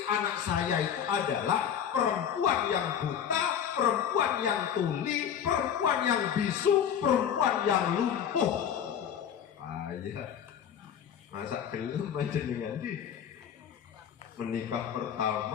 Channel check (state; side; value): quieter; right; 8.7 dB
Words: anak saya itu adalah perempuan yang buta, perempuan yang tuli, perempuan yang bisu, perempuan yang lumpuh. Ayah, masa gelem panjenengan di menikah